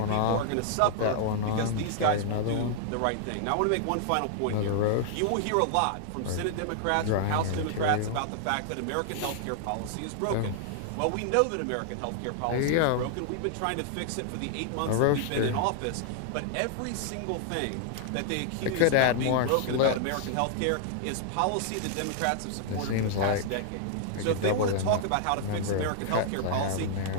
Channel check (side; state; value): both; different; correlation -0.01